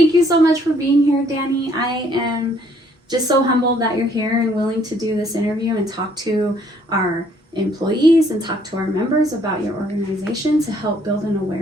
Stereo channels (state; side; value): normal; both; correlation 0.64